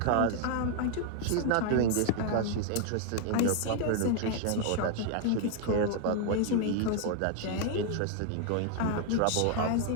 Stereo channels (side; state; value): both; different; correlation 0.00